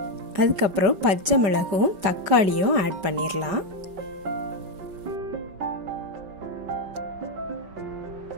அதுக்கப்புறம் பச்சை மிளகும் தக்காளியும் ஆட் பண்ணிடலாம்.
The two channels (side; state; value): left; late; 5.3 ms